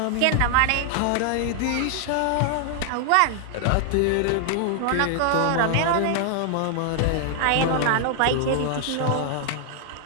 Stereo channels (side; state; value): both; different; correlation 0.00